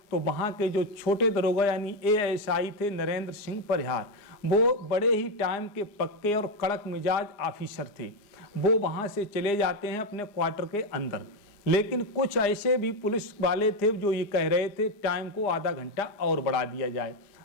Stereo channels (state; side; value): late; right; 4.9 ms